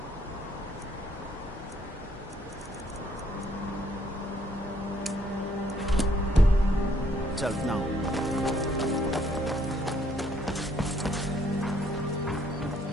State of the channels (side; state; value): both; normal; correlation 0.67